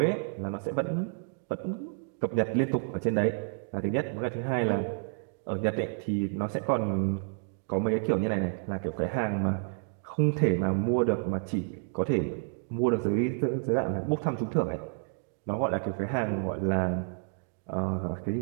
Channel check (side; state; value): left; silent; 58 dB below the other